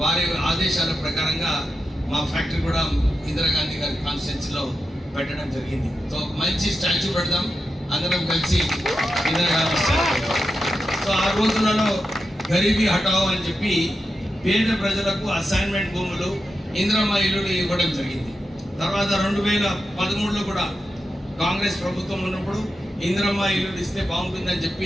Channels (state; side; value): normal; both; correlation 0.89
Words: వారి ఆదేశాల ప్రకారంగా మా ఫ్యాక్టరీ కూడా ఇందిరాగాంధీ గారి కాన్స్టిట్యున్సీలో పెట్టడం జరిగింది. సో మంచి స్టాచ్యూ పెడదాం అందరం కలిసి ఇందిరాగాంధీ స్టాచ్యూ. సో ఆ రోజులలో గరీబీ హటావో అని చెప్పి పేద ప్రజలకు అసైన్మెంట్ భూములు, ఇందిరమ్మ ఇల్లులు ఇవ్వడం జరిగింది. తర్వాత 2013లో కూడా కాంగ్రెస్ ప్రభుత్వం ఉన్నప్పుడు ఇందిరమ్మ ఇల్లులు ఇస్తే బాగుంటుందని చెప్పి